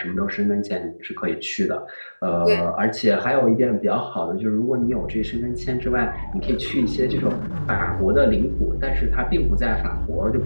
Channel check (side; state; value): both; inverted; correlation -1.00